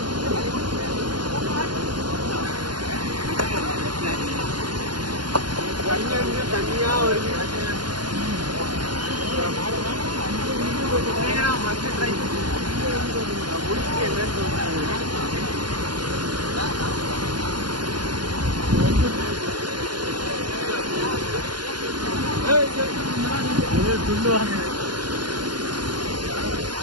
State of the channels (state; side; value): late; left; 0.71 ms